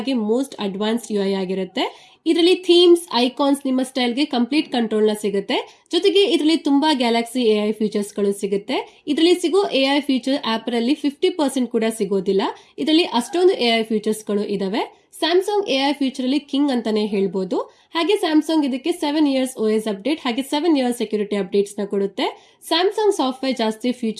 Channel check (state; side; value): identical; both; correlation 1.00